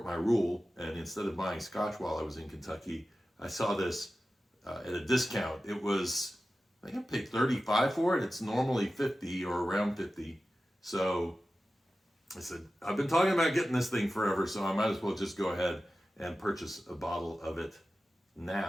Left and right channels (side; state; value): both; normal; correlation 0.94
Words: my rule, and instead of buying Scotch while I was in Kentucky, I saw this at a discount. It was, I think I paid $35 for it. It's normally $50 or around $50. So I said, I've been talking about getting this thing forever, so I might as well just go ahead and purchase a bottle of it